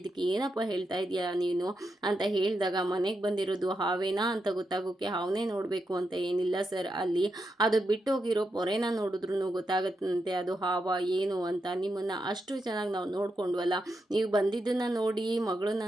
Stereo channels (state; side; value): normal; both; correlation 0.85